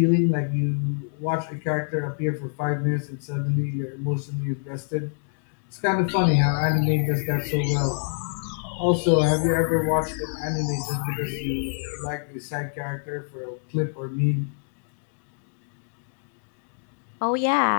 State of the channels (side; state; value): right; silent; digital silence